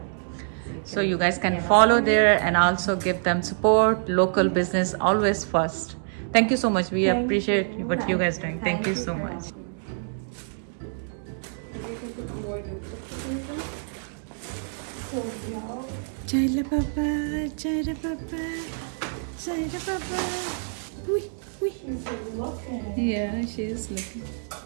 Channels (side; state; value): left; silent; digital silence